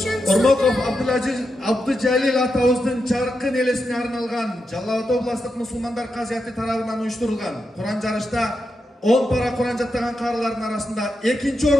Ормоков Абдыжалил атабыздын жаркын элесине арналган Жалал Абад областык мусулмандар казияты тарабынан уюштурулган Куран жарышта 10 пара Куран жаттаган карылардын арасында 2-чү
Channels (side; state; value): both; normal; correlation 0.86